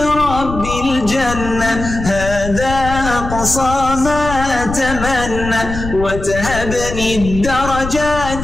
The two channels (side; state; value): left; noise; rumble, 8 dB below the sound